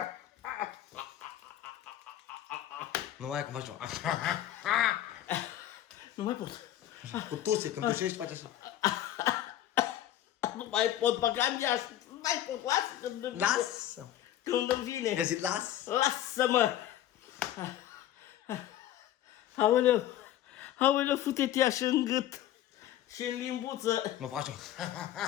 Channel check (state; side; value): quieter; right; 12.5 dB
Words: Nu mai cum faci tu. Nu mai pot. Cu tuse, când tușești faci așa. Nu mai pot băga în geas. Nu mai pot, lasă. Lasă! Când îmi vine. I-a zis las? Lasă-mă. Aoleu. Aoleu, fute-te așa în gât. Și în limbuță. Mă faci